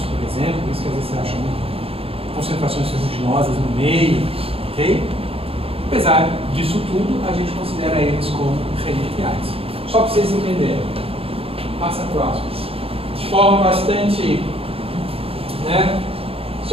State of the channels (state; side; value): late; left; 0.27 ms